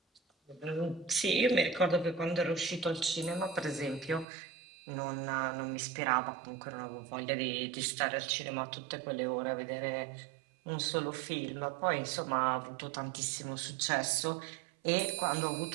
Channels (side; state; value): left; drops out; at 4.2 s